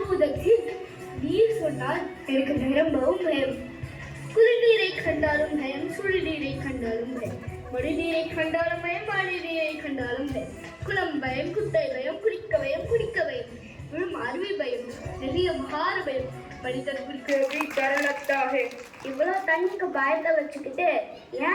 நீர் சொன்னால் எனக்கு நிரம்பவும் பயம். குளிர்நீரை கண்டாலும் பயம், சுடுநீரை கண்டாலும் பயம், மடிநீரை கண்டாலும் பயம், மழைநீரை கண்டாலும் பயம், குளம் பயம், குட்டை பயம், குடிக்க பயம், குடிக்க பயம், விழும் அருவி பயம், நிறைய மகார பயம், மனிதர்களுக்கு டர் லக்தா ஹை. இவ்வளவு தண்ணிக்கு பயத்தை வச்சுக்கிட்டு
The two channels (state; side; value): identical; both; correlation 1.00